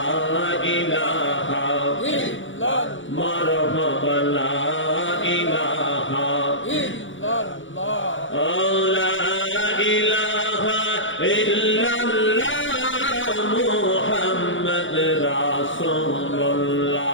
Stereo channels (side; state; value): right; late; 0.56 ms